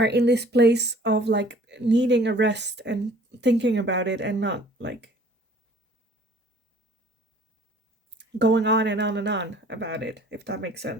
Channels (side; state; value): both; normal; correlation 0.53